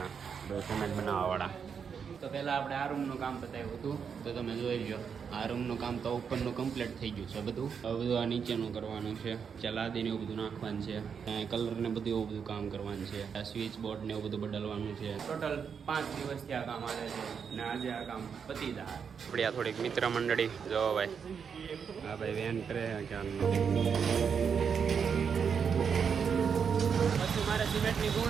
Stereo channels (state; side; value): quieter; left; 6.7 dB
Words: સિમેન્ટ બનાવવાવાળા. તો પહેલાં આપણે આ રૂમનું કામ બતાવ્યું હતું, તો તમે જોઈ લો. આ રૂમનું કામ તો ઉપરનું કમ્પ્લીટ થઈ ગયું છે બધું. હવે બધું આ નીચેનું કરવાનું છે. ચલાદીને એવું બધું નાખવાનું છે. કલર ને બધું એવું બધું કામ કરવાનું છે. આ સ્વિચ બોર્ડ ને એવું બધું બદલવાનું છે. ટોટલ 5 દિવસથી આ કામ આવે છે અને આજે આ કામ પતી જાય. આપણી આ થોડીક મિત્ર મંડળી જો ભાઈ. હા ભાઈ વેન કરે પછી મારે સિમેન્ટની